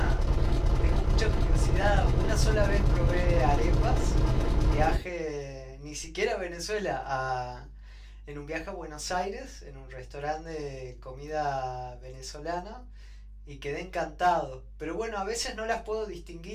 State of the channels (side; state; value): both; identical; correlation 1.00